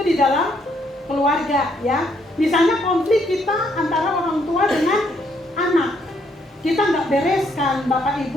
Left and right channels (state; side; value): normal; both; correlation 0.71